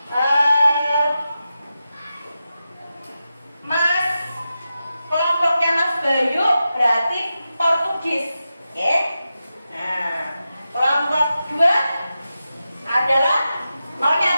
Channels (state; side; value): inverted; both; correlation -0.91